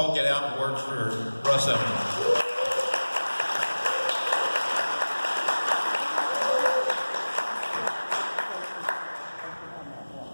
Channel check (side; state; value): both; inverted; correlation -1.00